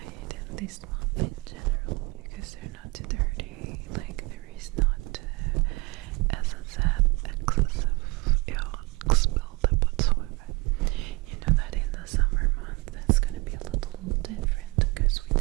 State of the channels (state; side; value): quieter; left; 24.7 dB